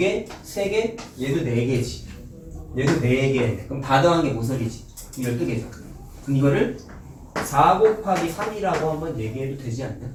3개, 얘도 4개지. 얘도 4개. 그럼 다 더한 게 모서리지. 12개죠. 그럼 이거를 4 곱하기 3이라고 한번 얘기해도 되지 않냐?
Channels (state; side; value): identical; both; correlation 1.00